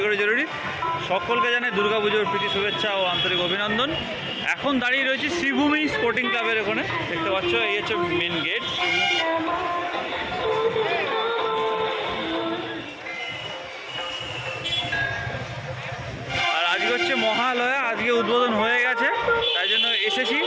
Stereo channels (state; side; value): identical; both; correlation 1.00